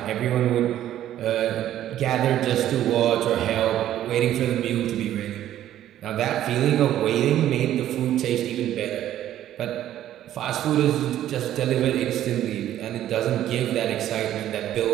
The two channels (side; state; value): left; quieter; 12.2 dB